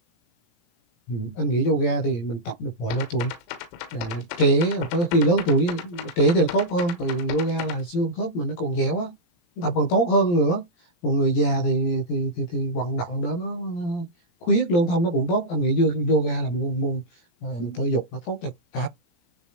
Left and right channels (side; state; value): right; late; 17 ms